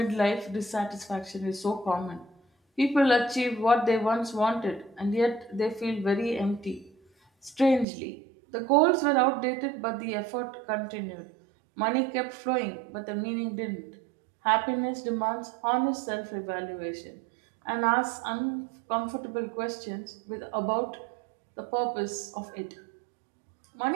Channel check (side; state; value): left; drops out; at 7.9 s